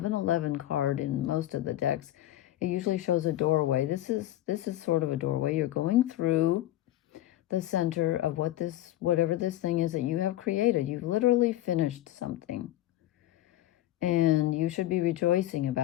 card in most of the decks. It usually shows a doorway. This is sort of a doorway. You're going through the center of whatever this thing is that you have created. You've literally finished something. And you should be rejoicing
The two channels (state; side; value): quieter; right; 14.4 dB